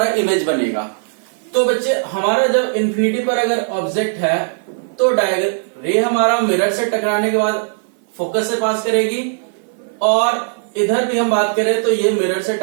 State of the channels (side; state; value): left; silent; 55 dB below the other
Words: इमेज बनेगा। तो बच्चे, हमारा जब इन्फिनिटी पर अगर ऑब्जेक्ट है तो रे हमारा मिरर से टकराने के बाद फोकस से पास करेगी, और इधर भी हम बात करें तो ये मिरर से